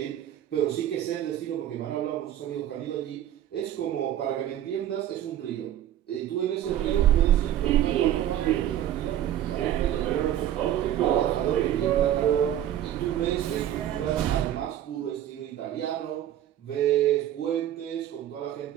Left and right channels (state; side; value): quieter; left; 11.7 dB